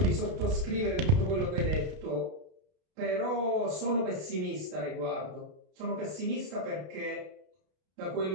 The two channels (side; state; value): left; late; 32 ms